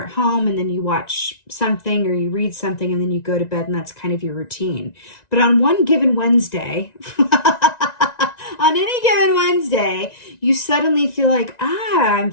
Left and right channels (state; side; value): late; right; 1.9 ms